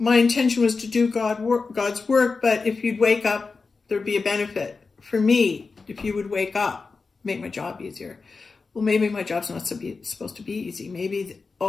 intention was to do God's work, but if you'd wake up, there'd be a benefit for me if you would wake up, make my job easier. Well, maybe my job's not supposed to be easy. Maybe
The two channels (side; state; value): right; quieter; 4.4 dB